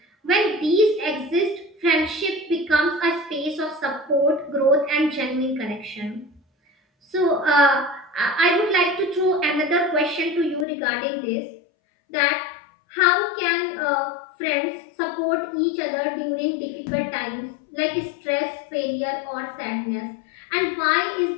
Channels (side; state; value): right; drops out; at 10.7 s